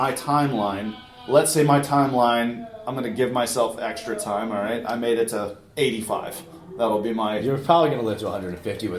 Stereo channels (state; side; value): identical; both; correlation 1.00